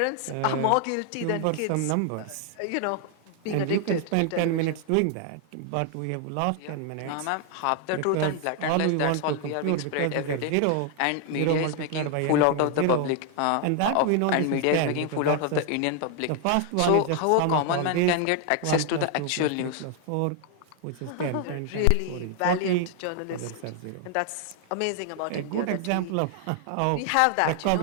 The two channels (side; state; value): both; different; correlation 0.00